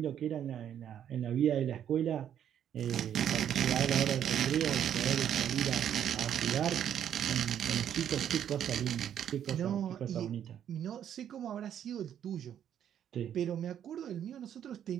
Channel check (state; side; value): quieter; left; 9.7 dB